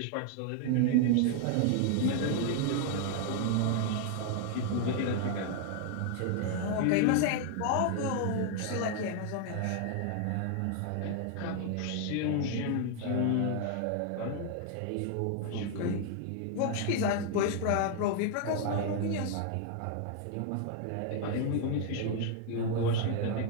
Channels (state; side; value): different; both; correlation 0.00